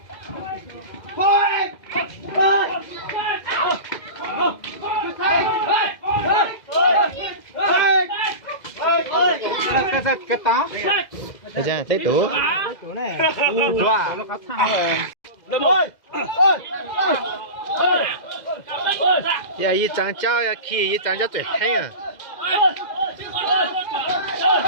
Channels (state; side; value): late; right; 2.0 ms